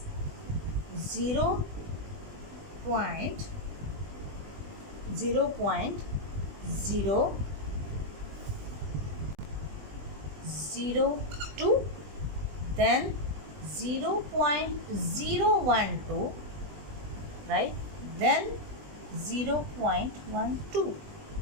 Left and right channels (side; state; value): left; late; 20 ms